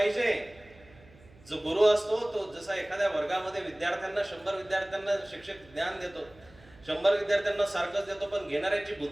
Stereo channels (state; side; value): noise; right; hum, 25 dB below the sound